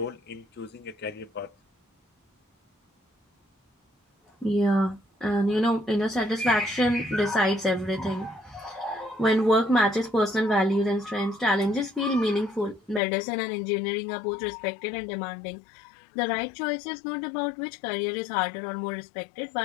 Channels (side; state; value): right; drops out; at 13.0 s